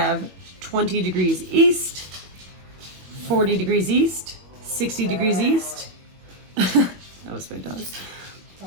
20 degrees east, 40 degrees east, 60 degrees east. That was my dog.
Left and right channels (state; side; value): late; left; 21 ms